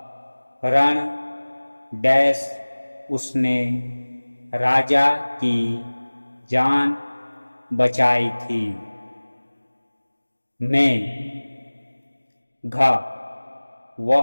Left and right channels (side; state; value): both; inverted; correlation -1.00